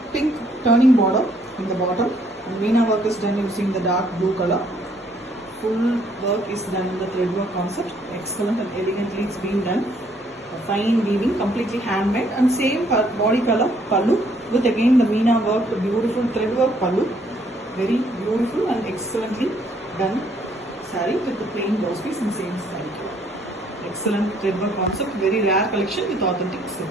pink turning border in the bottom. And Meena work is done using the dark blue color. Full work is done in the thread work concept. Excellent and elegantly it's been done. A fine weaving, completely handmade, and same body color pallu with again the Meena work, the beautiful thread work pallu. Very beautiful and excellently done saree with the plain blouse piece in same saree. Excellent thread work concept, very rare collection with authentic silk.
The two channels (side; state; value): both; normal; correlation 0.66